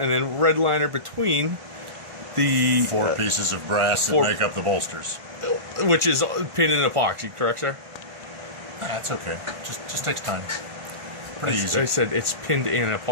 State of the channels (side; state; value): left; late; 1.5 ms